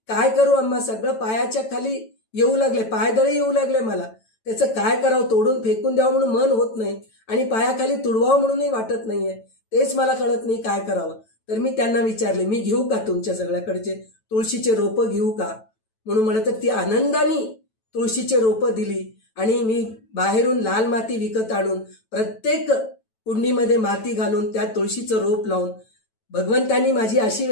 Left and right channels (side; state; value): right; late; 9.1 ms